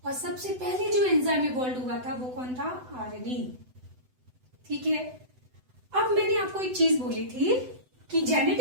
और सबसे पहले जो एंजाइम इवॉल्व हुआ था वो कौन था? आरएनए, ठीक है। अब मैंने आपको एक चीज बोली थी कि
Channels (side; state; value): left; late; 7.9 ms